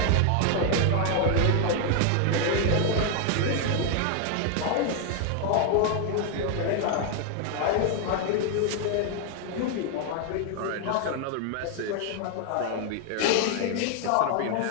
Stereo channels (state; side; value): different; both; correlation 0.00